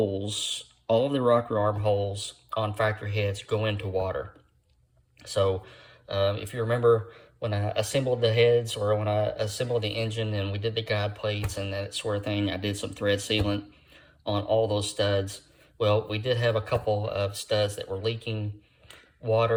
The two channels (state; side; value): identical; both; correlation 1.00